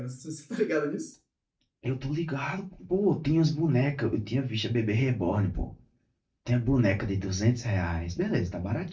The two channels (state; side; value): identical; both; correlation 1.00